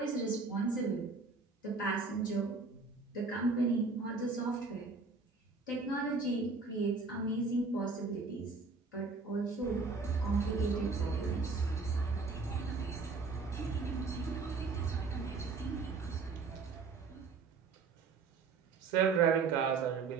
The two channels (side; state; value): left; quieter; 4.3 dB